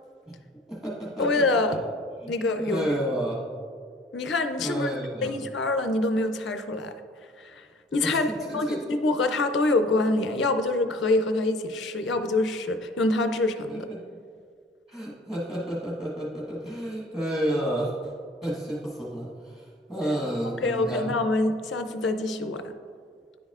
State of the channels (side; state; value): both; normal; correlation 0.51